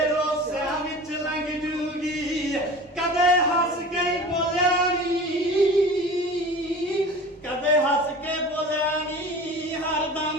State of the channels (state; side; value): normal; both; correlation 0.38